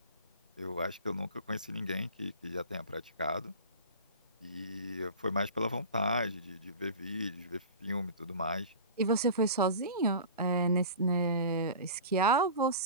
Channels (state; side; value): inverted; both; correlation -0.35